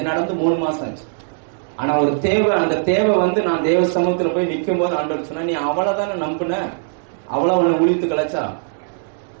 நடந்து 3 மாசம் ஆச்சு. ஆனா ஒரு தேவை, அந்த தேவை வந்து நான் தேவ சமூகத்துல போய் நிக்கும் போது ஆண்டவர் சொன்னா, நீ அவ்வளவுதானே நம்பின, அவ்வளவு உன்னை ஒழித்து கலைச்சா.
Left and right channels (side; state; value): left; silent; digital silence